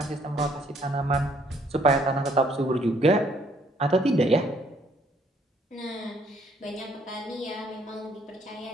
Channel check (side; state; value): both; normal; correlation 0.65